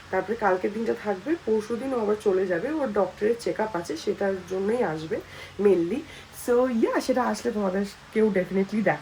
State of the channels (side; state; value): both; identical; correlation 1.00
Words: তারপরে কালকের দিনটা থাকবে, পরশু দিন ও আবার চলে যাবে, ওর ডক্টরের চেক আপ আছে, সেটার জন্যই আসবে মেনলি। সো সেটা আসলে তোমাদের কেউ ডেফিনেটলি